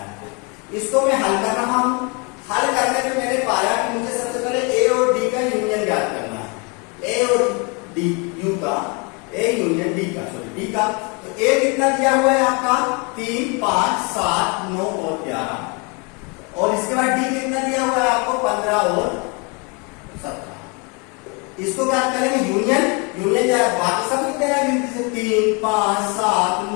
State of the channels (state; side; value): quieter; right; 31.8 dB